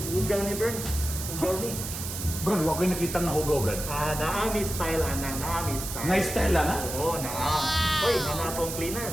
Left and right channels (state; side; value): noise; right; hiss, 7 dB below the sound